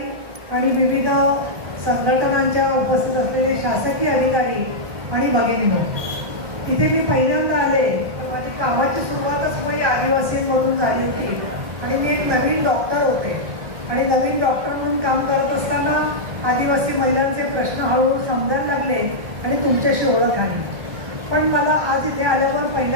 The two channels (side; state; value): left; late; 1.2 ms